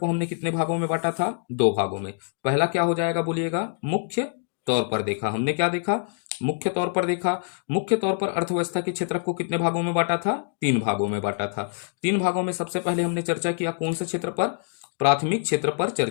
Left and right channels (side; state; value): right; silent; digital silence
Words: को हमने कितने भागों में बांटा था? 2 भागों में। पहला क्या हो जाएगा बोलिएगा? मुख्य तौर पर देखा। हमने क्या देखा? मुख्य तौर पर देखा। मुख्य तौर पर अर्थव्यवस्था के क्षेत्रक को कितने भागों में बांटा था? 3 भागों में बांटा था। 3 भागों में सबसे पहले हमने चर्चा किया कौन से क्षेत्र पर? प्राथमिक क्षेत्र पर